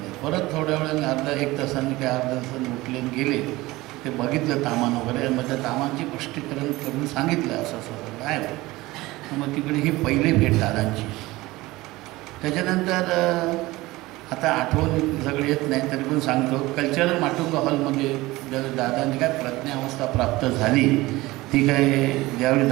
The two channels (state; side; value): quieter; left; 19.6 dB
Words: परत थोड्या वेळाने 1 तासांनी काय अर्ध्या तासांनी उठले गेले. ते बघितलं तामान वगैरे, मग त्या तामांची पुष्टीकरण करून सांगितलं असं असं काय. मग तिकडे ही पहिली भेट दादांची. त्याच्यानंतर आता आठवण सगळी येत नाही तरी पण सांगतो, कल्चरल माटुंग हॉलमध्ये दादांनी काय प्रज्ञावस्था प्राप्त झाली ती काय, ज्यावेळी